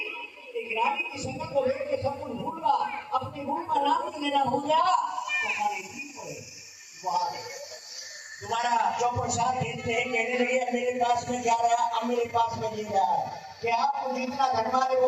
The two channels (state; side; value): identical; both; correlation 1.00